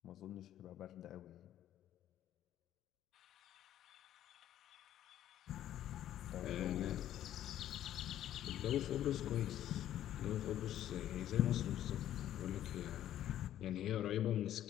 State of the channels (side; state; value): right; quieter; 11.9 dB